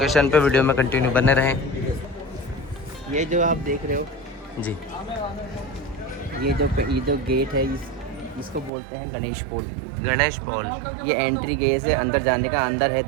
पे, वीडियो में कंटिन्यू बने रहें। ये जो आप देख रहे हो, जी। ये जो गेट है, इसको बोलते हैं गणेश पोल। गणेश पॉल। ये एंट्री गेट है अंदर जाने का। अंदर है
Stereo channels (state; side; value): drops out; left; at 8.7 s